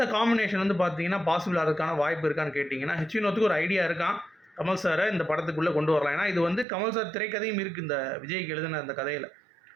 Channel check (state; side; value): drops out; left; at 6.7 s